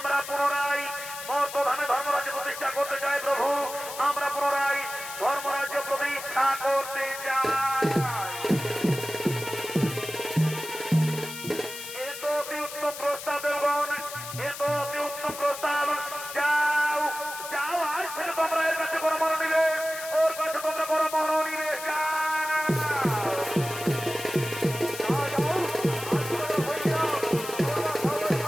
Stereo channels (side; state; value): left; noise; hiss, 10 dB below the sound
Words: পুনরায় মর্তধামে ধর্মরাজ্য প্রতিষ্ঠা করতে চাই প্রভু। আমরা পুনরায় ধর্মরাজ্য প্রতিষ্ঠা করতে চাই। এ তো অতি উত্তম প্রস্তাব দেবগণ, এ তো অতি উত্তম প্রস্তাব। যাও যাও, আজ থেকে তোমরা এর কাছে কোনো মনোনিবেশ, ওর কাছে তোমরা কোনো মনোনিবেশ